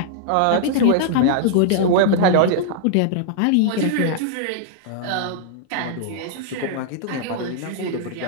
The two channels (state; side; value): different; both; correlation -0.01